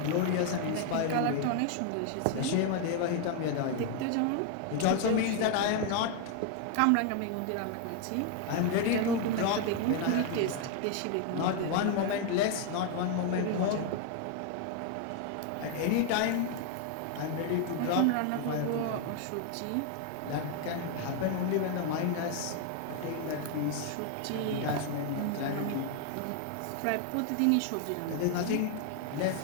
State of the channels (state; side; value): different; both; correlation 0.00